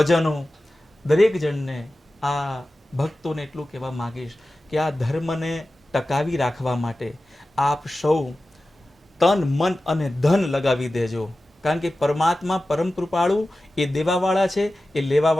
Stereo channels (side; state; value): both; normal; correlation 0.94